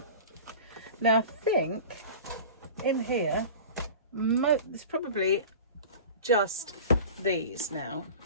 Now I think in here, it's probably just these now.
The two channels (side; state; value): both; inverted; correlation -0.37